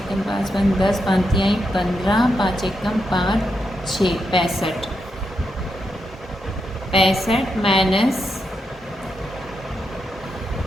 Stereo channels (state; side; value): normal; both; correlation 0.84